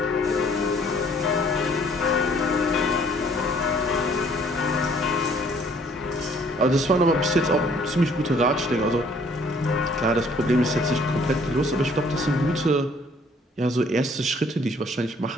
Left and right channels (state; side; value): normal; both; correlation 0.60